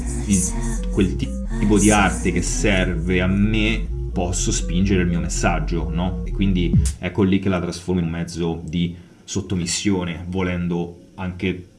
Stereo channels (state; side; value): identical; both; correlation 1.00